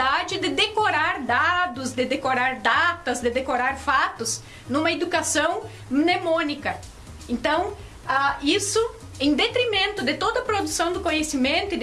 de decorar dados, de decorar datas, de decorar fatos, numa educação mnemônica. Então, isso em detrimento de toda a produção do conhecimento e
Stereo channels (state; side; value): identical; both; correlation 1.00